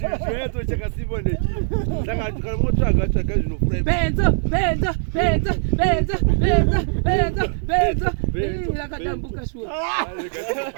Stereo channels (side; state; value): left; silent; 65 dB below the other